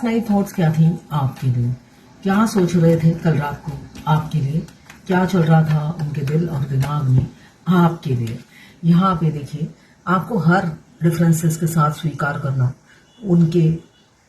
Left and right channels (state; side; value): identical; both; correlation 1.00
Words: नाइट थॉट्स क्या थी आपके लिए। क्या सोच रहे थे कल रात को आपके लिए, क्या चल रहा था उनके दिल और दिमाग में आपके लिए। यहाँ पे देखिए, आपको हर डिफरेंसेस के साथ स्वीकार करना उनके